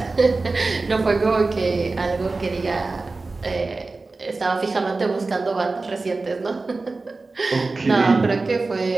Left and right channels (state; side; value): quieter; left; 3.6 dB